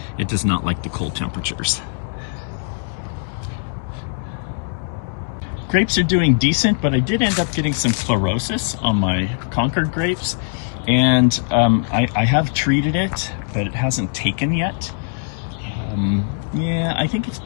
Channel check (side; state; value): right; silent; digital silence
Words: It does not like the cold temperatures. Grapes are doing decent, but I did end up getting some chlorosis on my Concord grapes. And I have treated it, but it hasn't taken yet. Yeah, I think it's